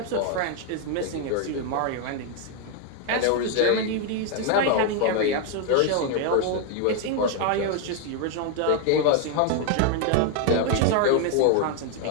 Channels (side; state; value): both; different; correlation 0.00